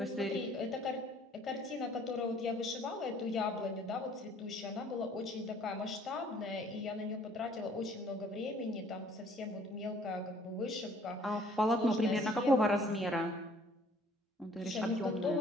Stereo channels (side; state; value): both; normal; correlation 0.57